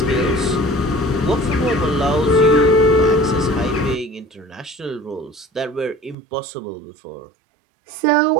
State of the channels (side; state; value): left; drops out; at 6.2 s